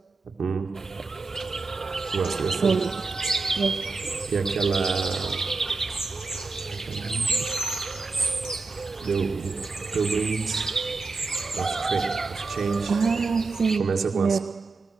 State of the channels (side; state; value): left; quieter; 4.1 dB